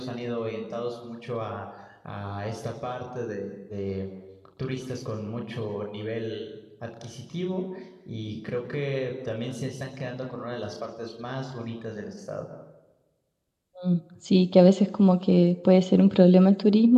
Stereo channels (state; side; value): identical; both; correlation 1.00